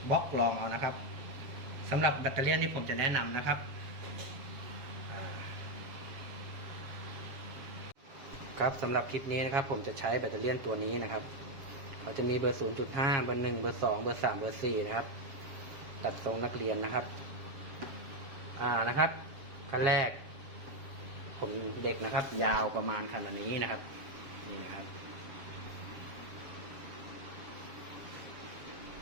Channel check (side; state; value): left; late; 7.3 ms